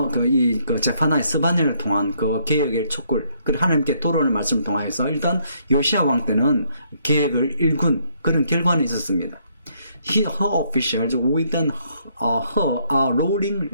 제파나의 스바냐를 통한 그 계획의 촉구를 하나님께 돌아오는 말씀을 통하여서 일단 요시아 왕 때는 계획을 일군 그런 결과는 있었습니다. her officials with her a rolling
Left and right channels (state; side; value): inverted; both; correlation -0.71